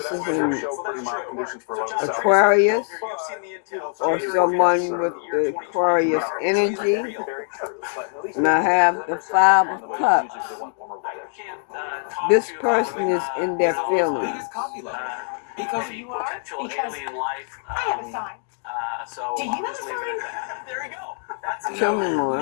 is an Aquarius or someone with the Aquarius energy. And I have the Five of Cups. This person is in their feelings. Because you are alien life. I have a sign. Do you have a sign? There you go. Tell me more.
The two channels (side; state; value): right; silent; 62 dB below the other